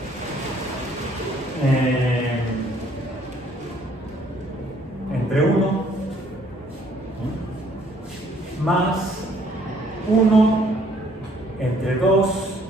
entre 1 más 1 entre 2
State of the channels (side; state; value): both; normal; correlation 0.63